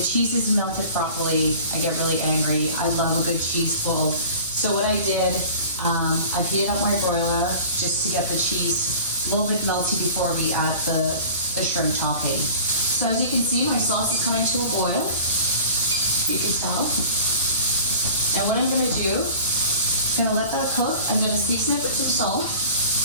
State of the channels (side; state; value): both; inverted; correlation -0.42